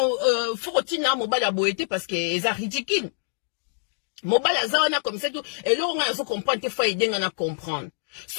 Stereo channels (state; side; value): silent; right; digital silence